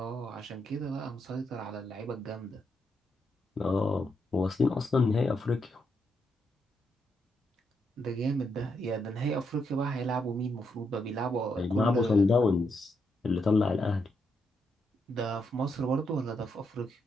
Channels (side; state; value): both; normal; correlation 0.80